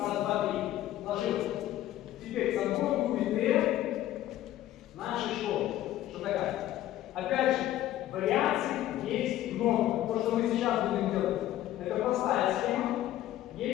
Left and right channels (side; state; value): right; quieter; 13.6 dB